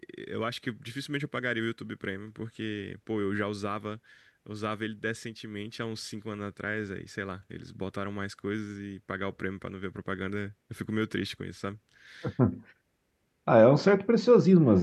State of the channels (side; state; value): both; identical; correlation 1.00